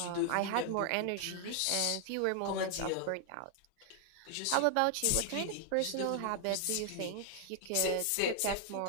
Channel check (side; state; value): both; different; correlation 0.00